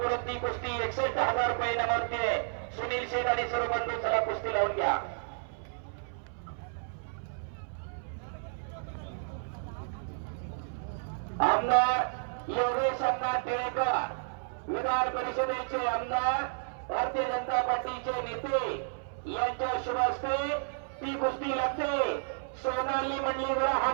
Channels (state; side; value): silent; left; 57 dB below the other